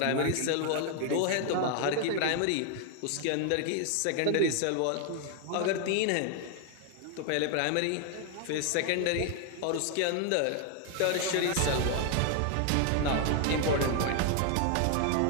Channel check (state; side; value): different; both; correlation 0.00